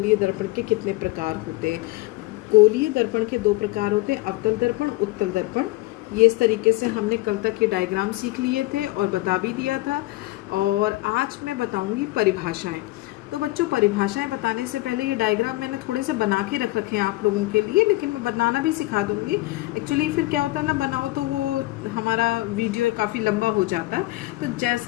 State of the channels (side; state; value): right; quieter; 19.7 dB